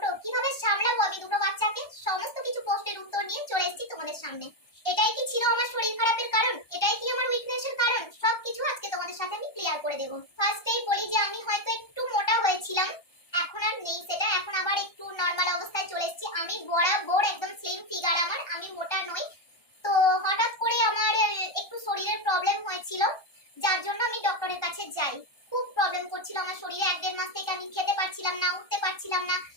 কিভাবে সামলাবো আমি দুটো বাচ্চাকে? সমস্ত কিছু প্রশ্নের উত্তর নিয়ে চলে এসেছি তোমাদের সামনে। এটাই কি ছিল আমার শরীর খারাপের কারণ? এটাই কি আমার উইকনেসের কারণ? সবকিছু আজকে তোমাদের সাথে আমি ক্লিয়ার করে দেব। ফার্স্টেই বলি যে আমি হয়তো একটু মোটা হয়েছিলাম, এখন আর নেই সেটা, এখন আবার একটু নরমাল অবস্থায় চলে এসেছি। আমি বরাবর একদম স্লিম ফিগার আমার, আমি মোটা নই। তো হঠাৎ করে আমার একটু শরীরের প্রবলেম হয়েছিল, যার জন্য আমি ডক্টরের কাছে যাই। খুব প্রবলেম করছিল আমার শরীরে, 1-1.5 মাস থেকে আমি খেতে পারছিলাম না, উঠতে পারছিলাম না।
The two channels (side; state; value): right; late; 1.3 ms